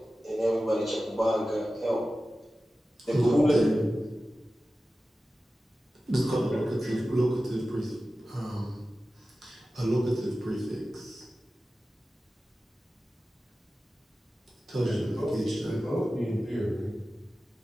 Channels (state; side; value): normal; both; correlation 0.95